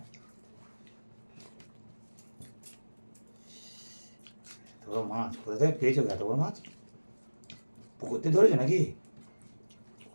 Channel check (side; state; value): both; inverted; correlation -1.00